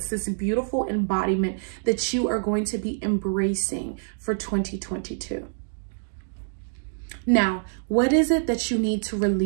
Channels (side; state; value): left; silent; digital silence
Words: this beautiful embodiment that you are going to be embracing for 2022. Now, what is it that you need to